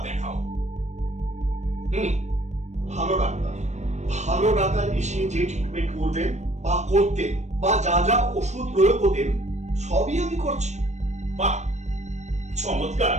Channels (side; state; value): left; late; 0.34 ms